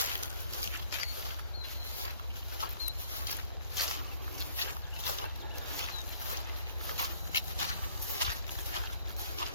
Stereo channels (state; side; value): inverted; both; correlation -0.60